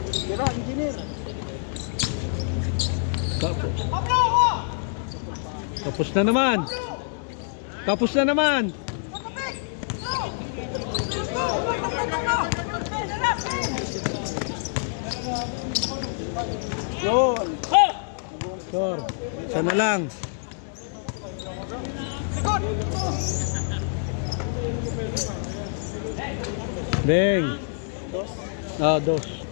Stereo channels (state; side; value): silent; right; digital silence